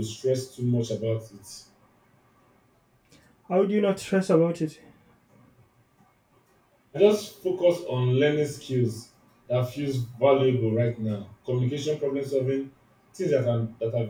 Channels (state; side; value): identical; both; correlation 1.00